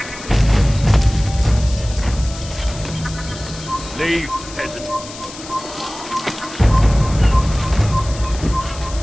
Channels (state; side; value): noise; left; hiss, 14 dB below the sound